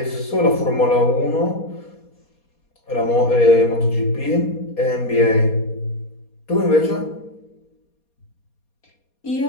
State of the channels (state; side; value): late; right; 4.2 ms